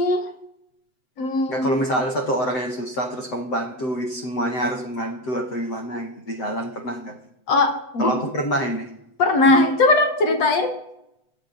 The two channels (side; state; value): right; late; 7.9 ms